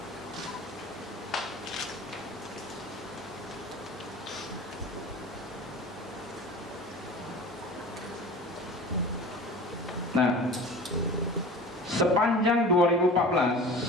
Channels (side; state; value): both; normal; correlation 0.38